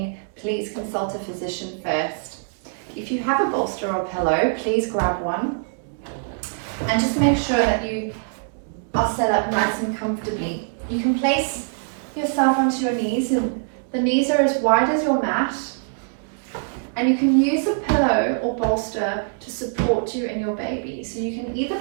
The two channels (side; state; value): left; silent; digital silence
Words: please consult a physician first. If you have a bolster or pillow, please grab one and just make sure that you are set up nice and comfortably. You can place yourself onto your knees, and the knees are as wide as your mat. And you can use a pillow or bolster to support you and your baby. So you can either